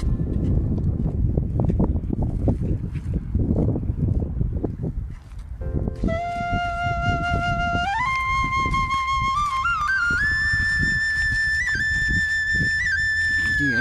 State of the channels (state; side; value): identical; both; correlation 1.00